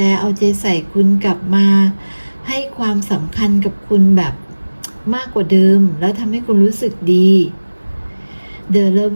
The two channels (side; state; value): both; inverted; correlation -1.00